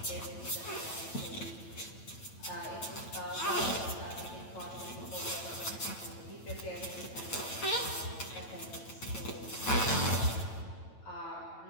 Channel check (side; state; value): right; late; 9.1 ms